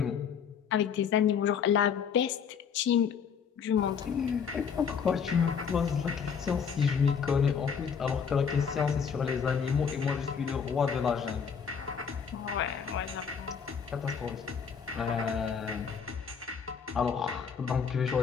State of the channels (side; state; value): right; quieter; 6.8 dB